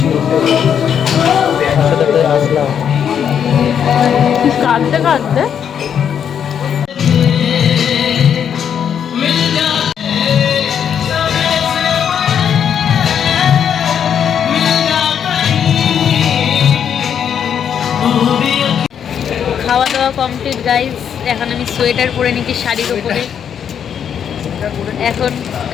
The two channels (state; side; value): quieter; right; 8.3 dB